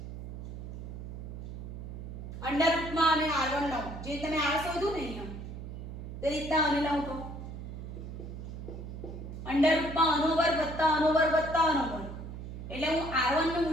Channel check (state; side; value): noise; right; hum, 9 dB below the sound